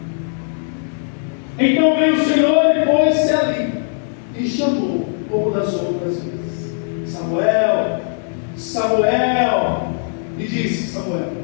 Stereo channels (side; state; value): right; silent; digital silence